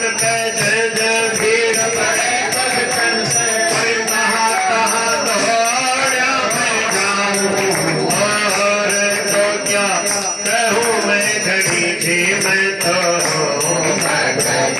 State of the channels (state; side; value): identical; both; correlation 1.00